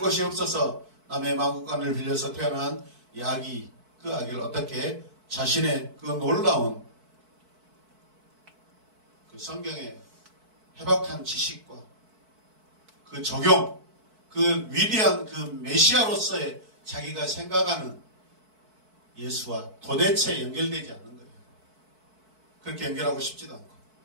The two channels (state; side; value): late; left; 4.6 ms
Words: 없어서 남의 마구간을 빌려서 태어난 이 아기, 그 아기를 어떻게 자신의 그 놀라운 그 성경의 해박한 지식과 그 적용, 그 위대한 그 메시아로서의 자기가 생각하는 예수와 도대체 연결되지 않는 거예요. 그렇게 연결하고 싶지도 않고